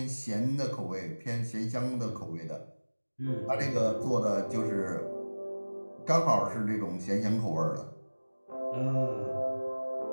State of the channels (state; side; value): inverted; both; correlation -1.00